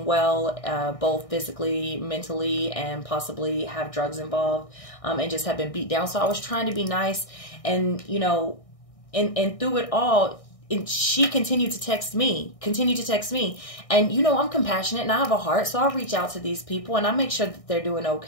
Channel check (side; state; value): right; late; 1.6 ms